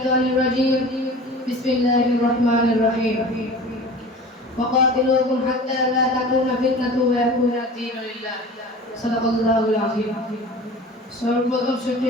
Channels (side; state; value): both; normal; correlation 0.39